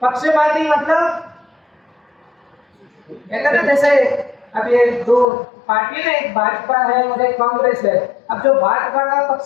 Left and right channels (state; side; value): drops out; right; at 5.2 s